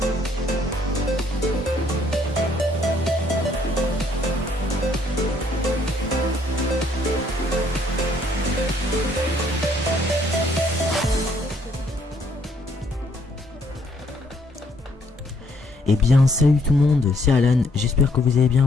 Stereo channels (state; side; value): normal; both; correlation 0.67